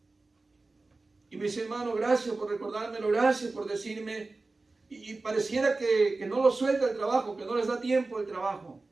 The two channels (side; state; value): left; quieter; 3.4 dB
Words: Y me dice, hermano, gracias por recordármelo, gracias por decirme. Y pareciera que no lo suelta el trabajo, que no les da tiempo el trabajo.